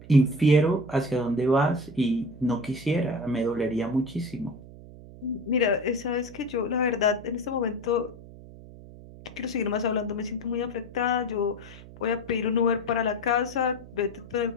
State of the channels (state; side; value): noise; right; hum, 17 dB below the sound